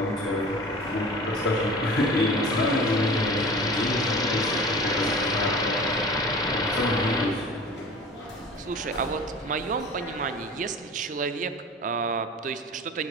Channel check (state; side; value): normal; both; correlation 0.39